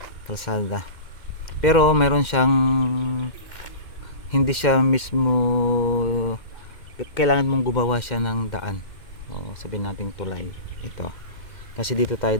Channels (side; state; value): right; late; 2.1 ms